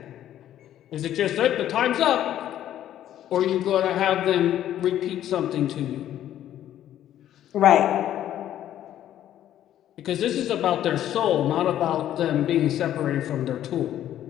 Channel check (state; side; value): quieter; right; 11.7 dB